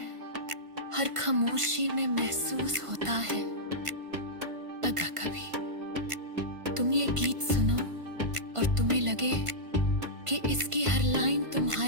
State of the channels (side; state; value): left; late; 1.5 ms